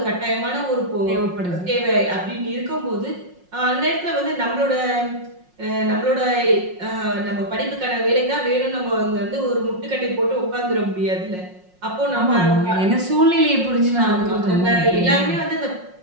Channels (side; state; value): left; late; 5.5 ms